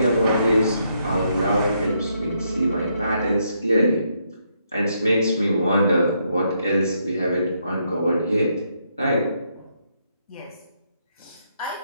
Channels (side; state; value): both; inverted; correlation -0.76